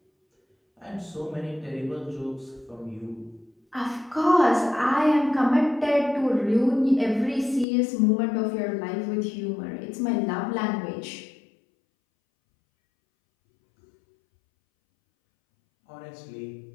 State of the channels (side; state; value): right; drops out; at 7.7 s